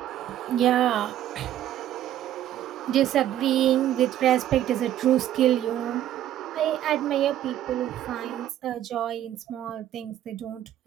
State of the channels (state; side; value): quieter; left; 12.0 dB